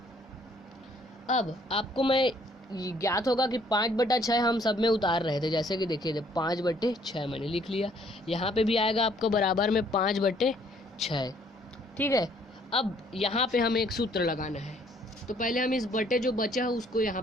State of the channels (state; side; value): normal; both; correlation 0.63